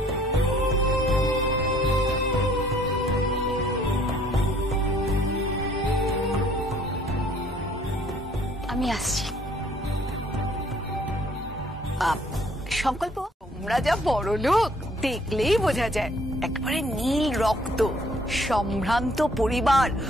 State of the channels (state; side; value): normal; both; correlation 0.60